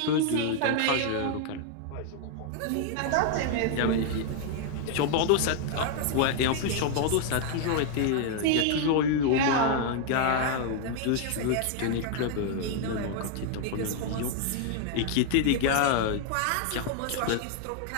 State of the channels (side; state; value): both; different; correlation 0.00